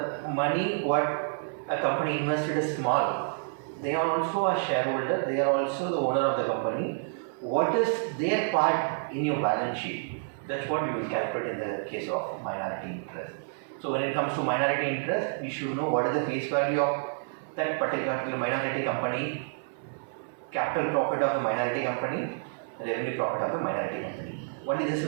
money what a company invested is small, they are also a shareholder, they are also the owner of the company. What is their part in your balance sheet? That's what we will calculate in the case of minority interest. So when it comes to minority interest, we should know what is the face value of that particular minority company, capital profit of the minority company, revenue profit of the minority company. Only this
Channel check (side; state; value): left; silent; 59 dB below the other